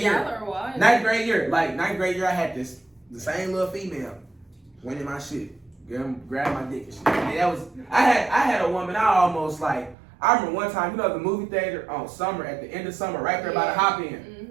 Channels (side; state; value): left; drops out; at 10.0 s